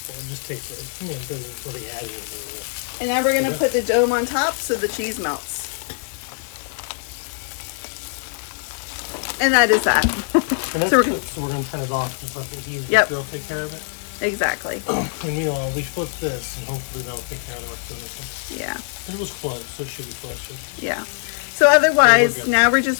It just takes it. It doesn't really add anything. And now we're going to put the dome on top so the cheese melts. And that is that. And that's cooked, so we're going to turn it off and let the heat grill take care of it. Exactly. And meanwhile, we flip this, and hopefully that'll take care of the rest of this one. Yeah. It was close, so it should be close. Yeah. So otherwise, now we're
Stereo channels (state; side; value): silent; right; digital silence